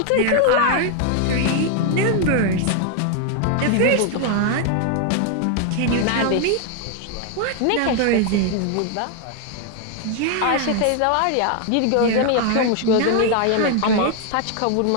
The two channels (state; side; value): different; both; correlation 0.00